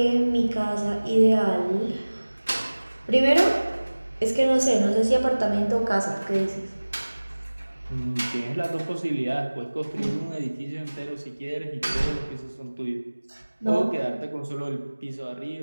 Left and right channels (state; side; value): inverted; both; correlation -1.00